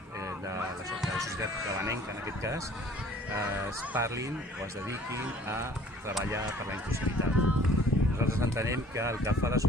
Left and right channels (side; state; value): both; normal; correlation 0.52